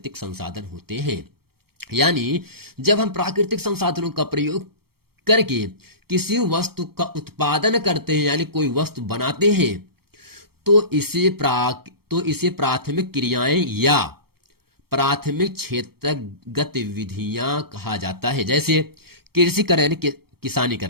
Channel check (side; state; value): left; late; 0.95 ms